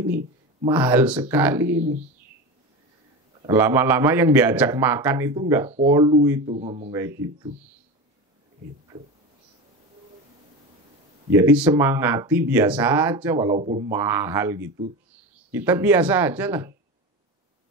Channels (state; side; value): normal; both; correlation 0.25